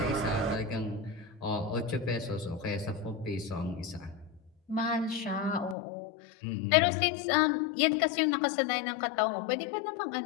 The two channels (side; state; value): right; drops out; at 5.8 s